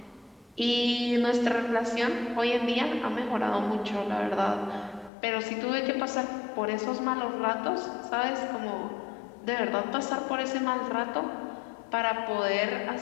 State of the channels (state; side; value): drops out; right; at 5.1 s